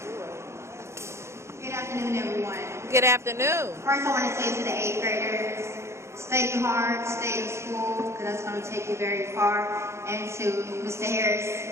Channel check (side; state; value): left; late; 0.13 ms